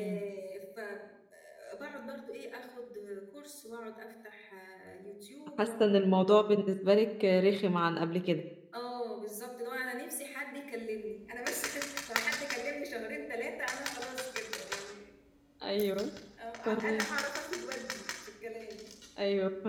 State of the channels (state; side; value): identical; both; correlation 1.00